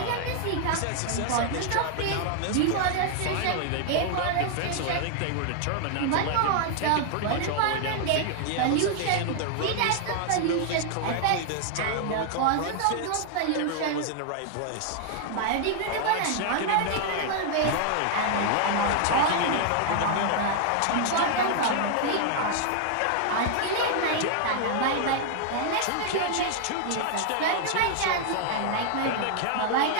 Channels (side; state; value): both; different; correlation 0.00